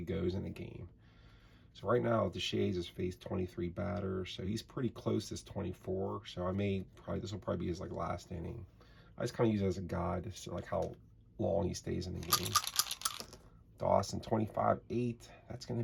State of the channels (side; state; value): both; identical; correlation 1.00